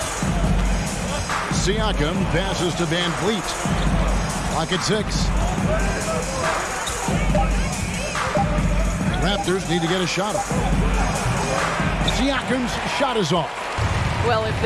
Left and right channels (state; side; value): identical; both; correlation 1.00